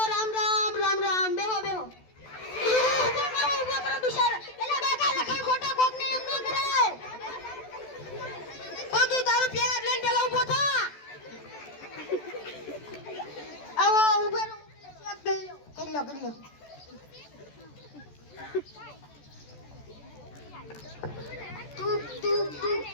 રામ બેહો ઉભો કરો બિચારા એલા બાકા લખણ ખોટા કોક ને એમ ન કરાય ઓ તું તારું પ્યાર લઈને પેલા ઊભો થા. આવો ઉભો રહો કરી લો તું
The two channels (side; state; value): right; late; 14 ms